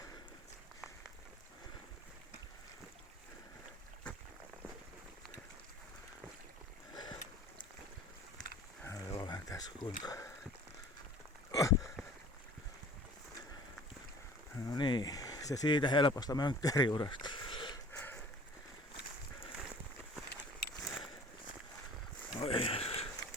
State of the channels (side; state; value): both; normal; correlation 0.46